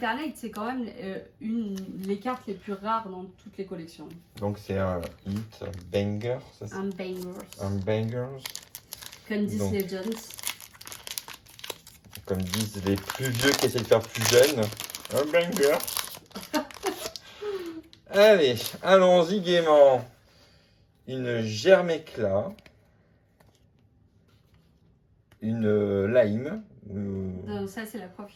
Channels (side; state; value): both; identical; correlation 1.00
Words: c'est quand même les cartes les plus rares dans toutes les collections. donc c'est un hit, un banger, ça c'est Un bangers. un bangers, Comme disent Donc. les Jones. comme disent les plus vieux qui essaient de faire plus jeunes, un banger. Allez, allons-y gaiement. Une germe éclat, une lime. Ça, c'est la prof